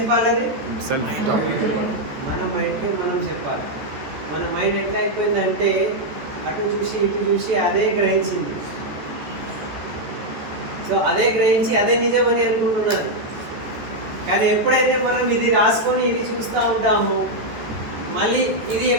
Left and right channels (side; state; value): left; late; 14 ms